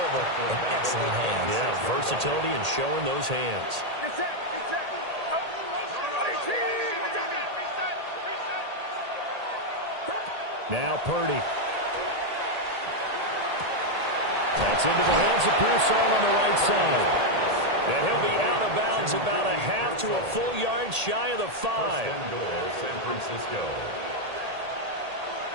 and excellent hands. Yeah, versatility and showing those hands. Now Purdy. That's into the hands of Pearsall on the right side. And he'll be out of bounds about a half to a full yard shy of the 5. 1st and goal, San Francisco.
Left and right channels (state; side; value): late; left; 1.8 ms